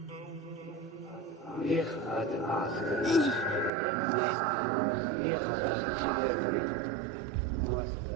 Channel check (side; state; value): left; drops out; at 3.7 s